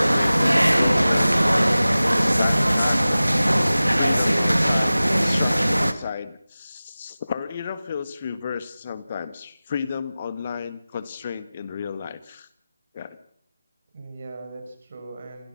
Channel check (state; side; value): inverted; both; correlation -0.96